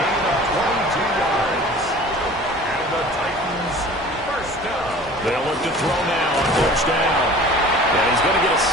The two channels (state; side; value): normal; both; correlation 0.43